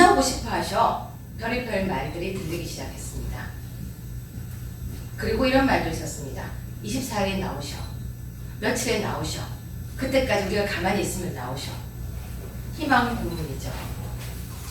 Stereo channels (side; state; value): both; identical; correlation 1.00